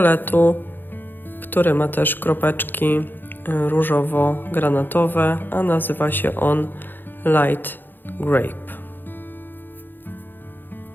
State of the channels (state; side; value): late; right; 0.093 ms